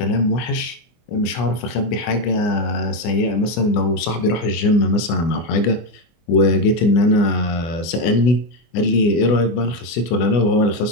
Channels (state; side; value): late; right; 24 ms